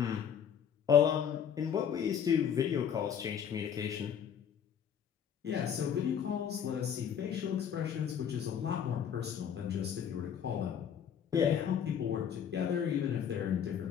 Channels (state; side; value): quieter; right; 8.3 dB